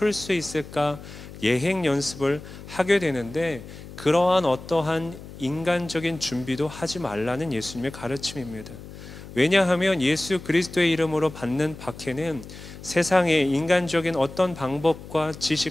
수 있을까 예행 연습을 하게 되는데, 그러한 어떠한 인간적인 준비도 하지 말라는 예수님의 가르침입니다. 왜냐하면 예수 그리스도의 이름으로 받는 박해는 세상의 인간적인 어떤 방법과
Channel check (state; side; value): noise; left; hum, 15 dB below the sound